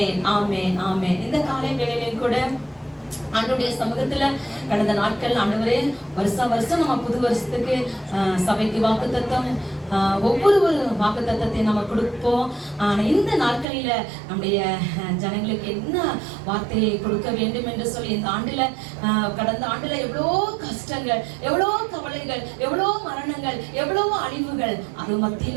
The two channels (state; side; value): drops out; left; at 13.7 s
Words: ஆமென் ஆமென். இந்த காலை வேளையிலும் கூட ஆண்டவருடைய சமூகத்துல கடந்த நாட்கள் ஆண்டவரே வருஷம் நம்ம புது வருஷத்துக்கு சபைக்கு வாக்குத்தத்தம் ஒவ்வொரு வாக்குத்தத்தத்தை நம்ம கொடுப்போம். இந்த நாட்களில நம்முடைய ஜனங்களுக்கு என்ன வார்த்தையை கொடுக்க வேண்டும் என்று சொல்லி இந்த ஆண்டுல கடந்த ஆண்டுல எவ்வளோ கஷ்டங்கள், எவ்வளோ கவலைகள், எவ்வளோ மரணங்கள், எவ்வளோ அழிவுகள், அது